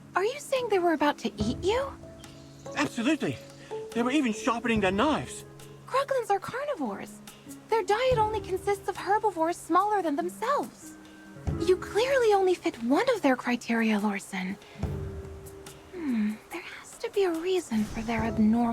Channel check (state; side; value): identical; both; correlation 1.00